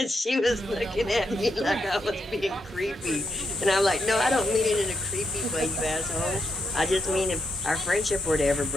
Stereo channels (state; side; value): normal; both; correlation 0.81